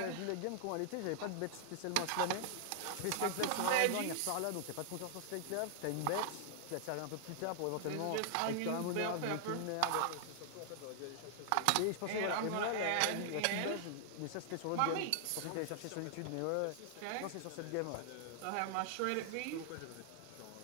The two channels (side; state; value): both; different; correlation 0.00